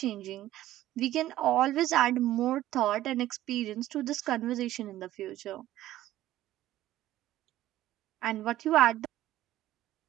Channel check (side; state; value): left; quieter; 14.3 dB